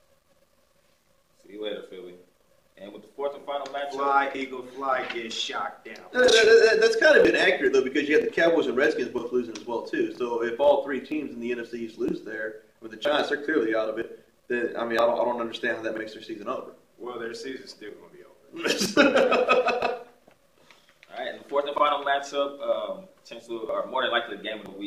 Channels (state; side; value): identical; both; correlation 1.00